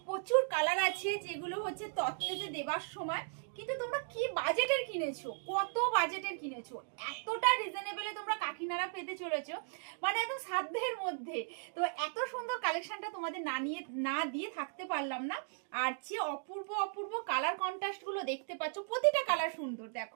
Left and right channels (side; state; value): left; silent; digital silence